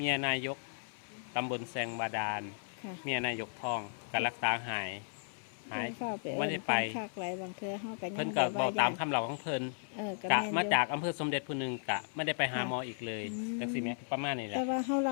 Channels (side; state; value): right; silent; 54 dB below the other